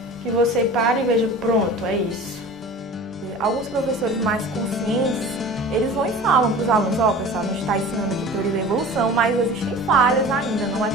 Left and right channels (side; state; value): right; noise; hum, 29 dB below the sound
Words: que você pare e veja, pronto, é isso. Alguns professores mais conscientes, eles vão e falam para os alunos, pessoal, a gente está ensinando aqui teoria da evolução, mas existem falhas ainda, não é